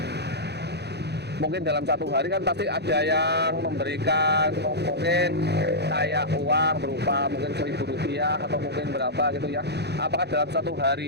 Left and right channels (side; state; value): left; late; 0.48 ms